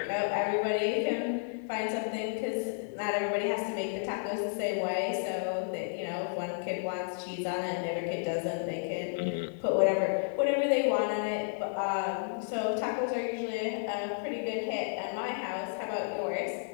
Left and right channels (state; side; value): silent; right; digital silence